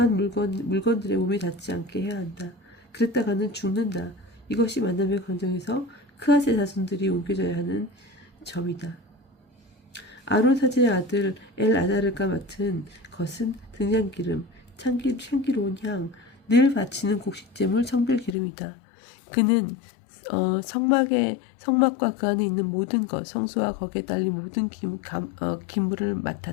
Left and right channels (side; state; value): right; drops out; at 18.4 s